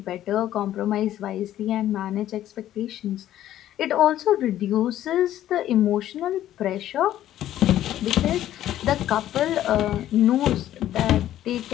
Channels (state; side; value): quieter; right; 12.6 dB